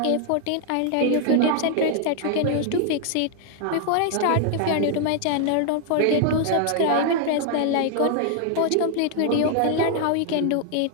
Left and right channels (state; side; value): different; both; correlation 0.00